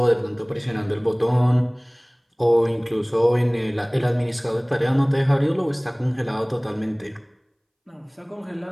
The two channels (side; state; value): both; identical; correlation 1.00